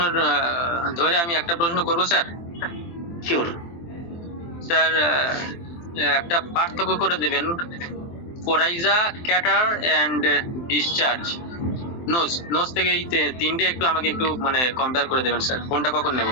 ধরে আমি একটা প্রশ্ন করব স্যার। শিওর স্যার, একটা পার্থক্য করে দেবেন, coryza, catarrh and discharge, nose থেকে এই তিনটে একটু আমাকে একটু মানে কম্পেয়ার করে দেবেন স্যার, কোনটা কখন নেব?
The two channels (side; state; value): right; late; 23 ms